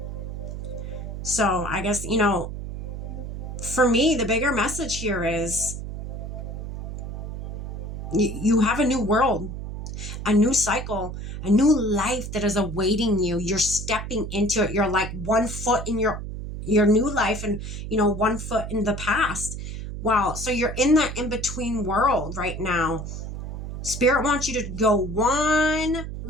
So I guess, you know, for me, the bigger message here is you have a new world, a new cycle, a new life that is awaiting you. You're stepping into it. You're like 1 foot in your new life and, you know, 1 foot in the past. Wow. So you're in that in-between world right now. Spirit wants you to go one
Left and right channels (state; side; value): noise; right; hum, 7 dB below the sound